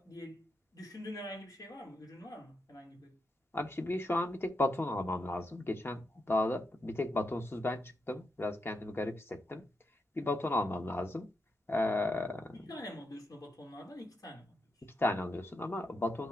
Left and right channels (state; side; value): normal; both; correlation 0.84